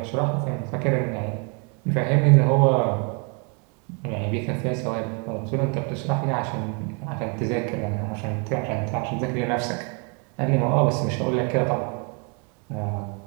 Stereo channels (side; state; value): left; quieter; 35.8 dB